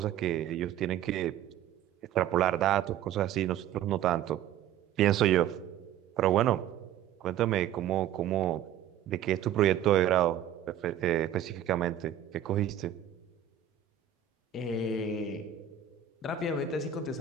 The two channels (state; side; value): quieter; left; 10.2 dB